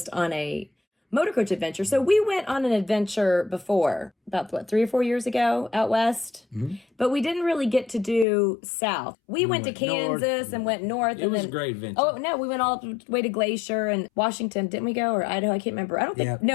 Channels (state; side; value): drops out; right; at 8.2 s